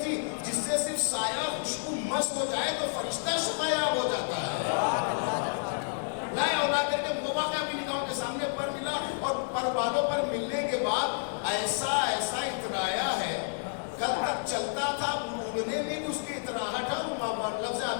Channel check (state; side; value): silent; right; 58 dB below the other